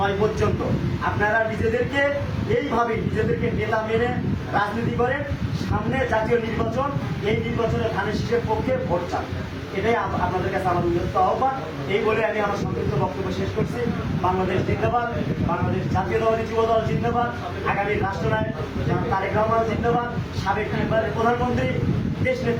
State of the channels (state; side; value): identical; both; correlation 1.00